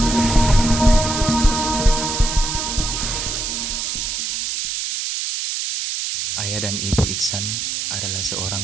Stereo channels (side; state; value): right; noise; hiss, 3 dB below the sound